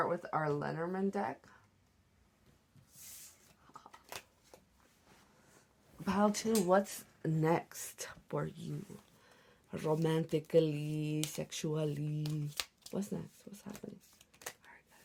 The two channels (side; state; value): both; identical; correlation 1.00